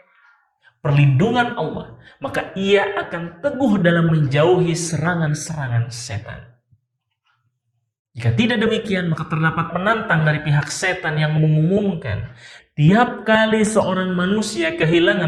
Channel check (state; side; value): identical; both; correlation 1.00